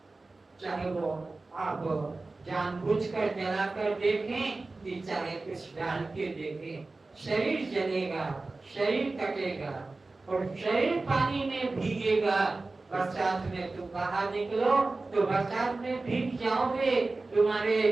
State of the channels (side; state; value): left; quieter; 3.4 dB